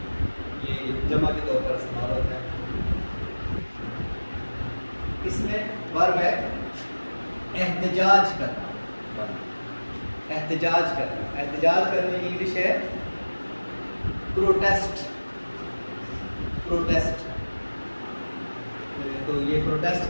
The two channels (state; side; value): inverted; both; correlation -1.00